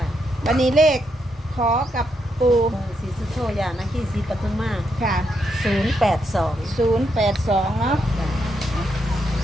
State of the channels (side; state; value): both; normal; correlation 0.80